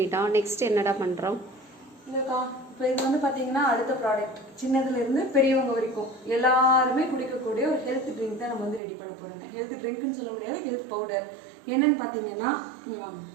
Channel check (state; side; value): drops out; left; at 8.8 s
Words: நெக்ஸ்ட் என்னடா பண்ணுறோம்? இல்லைக்கா, இப்போ இது வந்து பார்த்தீங்கன்னா அடுத்த ப்ராடக்ட், சின்னதுலேருந்து பெரியவங்க வரைக்கும் எல்லாருமே குடிக்கக்கூடிய ஒரு ஹெல்த் ட்ரிங்க் தான் நம்ம வந்து ரெடி பண்ண போகிறோங்க. ஹெல்த் ட்ரிங்க்னு சொல்ல முடியாது, ஹெல்த் பவுடர். என்னன்னு பார்த்தீங்கன்னா இங்கே வாங்க,